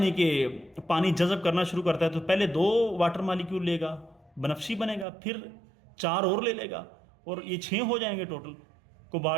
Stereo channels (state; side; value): drops out; left; at 5.1 s